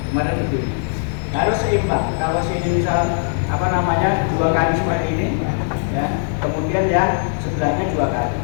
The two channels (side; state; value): right; silent; digital silence